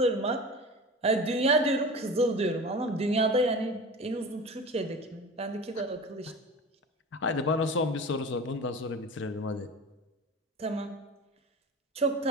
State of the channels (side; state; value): both; normal; correlation 0.34